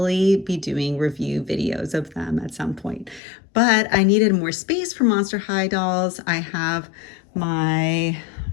be doing review videos of them at some point. But I needed more space for Monster High dolls. I have my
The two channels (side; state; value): right; drops out; at 3.2 s